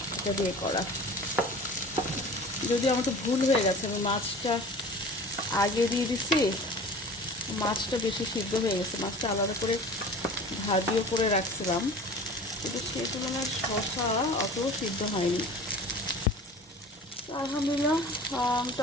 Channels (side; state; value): both; normal; correlation 0.40